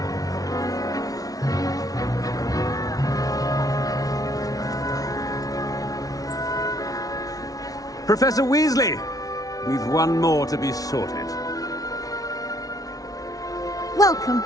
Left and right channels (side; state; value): right; late; 0.18 ms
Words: Professor Weasley, we've one more to be sorted. Welcome.